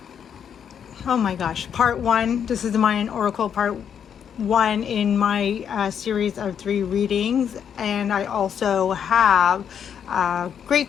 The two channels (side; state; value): right; quieter; 8.2 dB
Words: my gosh. Part 1. This is the Mayan Oracle part 1 in my series of 3 readings. And I also have a